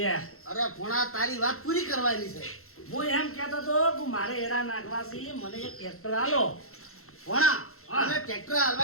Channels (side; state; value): right; late; 0.62 ms